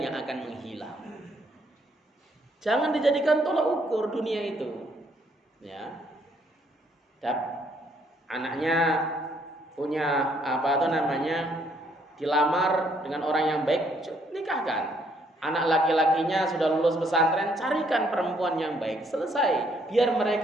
yang akan menghilang. Jangan dijadikan tolak ukur dunia itu. Ya. Anaknya punya dilamar dengan orang yang baik, nikahkan. Anak laki-lakinya sudah lulus pesantren, carikan perempuan yang baik. Selesai. Biar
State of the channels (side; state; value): both; normal; correlation 0.68